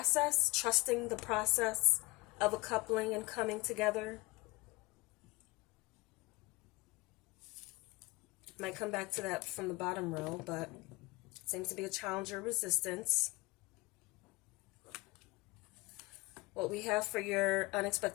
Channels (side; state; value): right; quieter; 23.3 dB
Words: trusting the process of a coupling and coming together. Might come back to that from the bottom row, but it seems to be a challenge or resistance. What we have for your